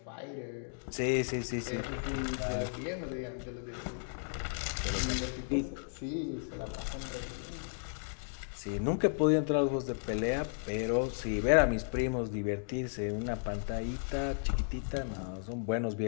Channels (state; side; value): silent; right; digital silence